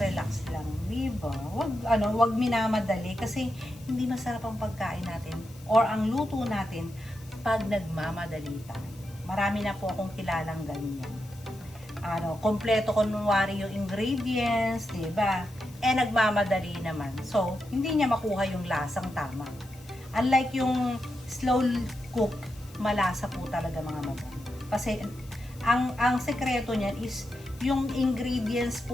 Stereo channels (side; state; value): left; noise; hiss, 23 dB below the sound